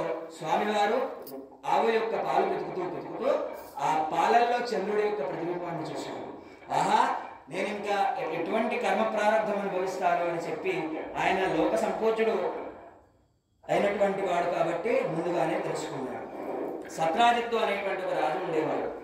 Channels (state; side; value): identical; both; correlation 1.00